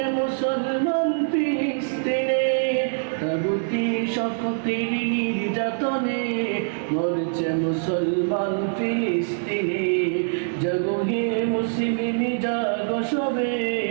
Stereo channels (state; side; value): silent; left; 60 dB below the other